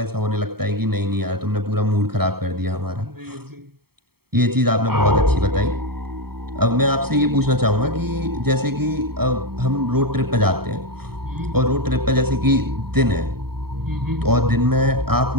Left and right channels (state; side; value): late; left; 0.95 ms